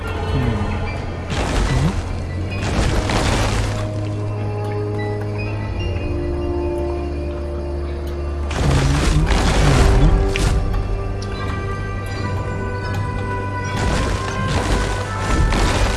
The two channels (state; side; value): identical; both; correlation 1.00